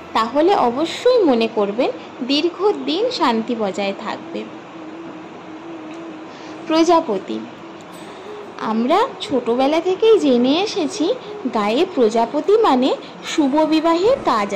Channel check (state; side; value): identical; both; correlation 1.00